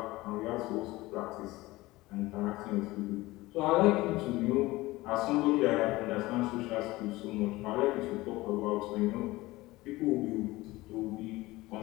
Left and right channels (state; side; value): quieter; right; 19.5 dB